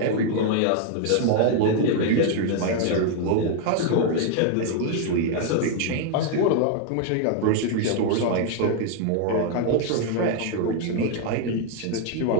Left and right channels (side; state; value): both; different; correlation 0.00